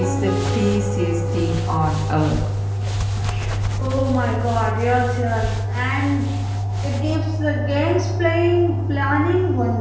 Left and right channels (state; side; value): identical; both; correlation 1.00